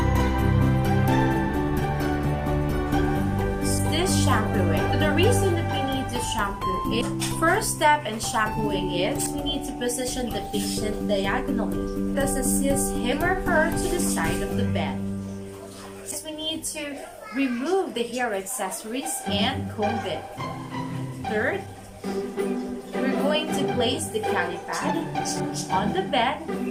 Shampooing. So the reason that we need to shampoo it, first step in shampooing is we need to position the patient diagonally. This assists him or her to the side of the bed. We need to remove the hair accessories and comb it. Third, we're going to place the cali pad on the bed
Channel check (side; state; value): both; identical; correlation 1.00